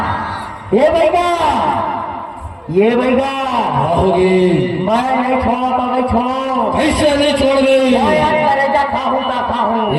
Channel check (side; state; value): both; identical; correlation 1.00